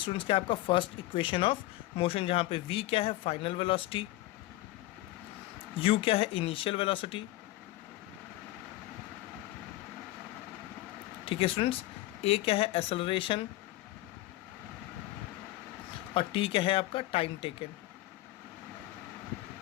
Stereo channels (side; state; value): right; quieter; 17.3 dB